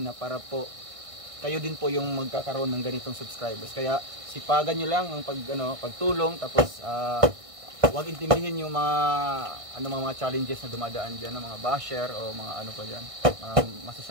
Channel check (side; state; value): left; late; 1.6 ms